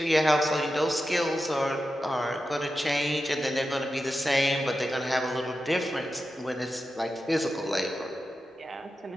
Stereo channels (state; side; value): normal; both; correlation 0.91